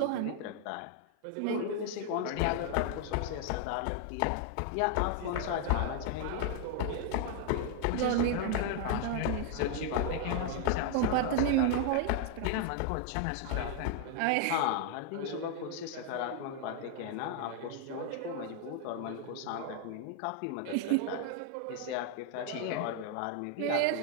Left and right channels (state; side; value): different; both; correlation 0.00